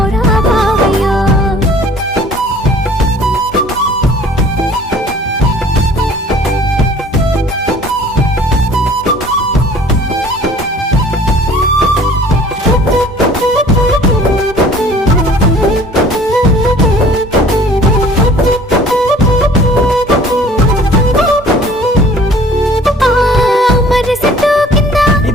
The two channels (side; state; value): both; normal; correlation 0.51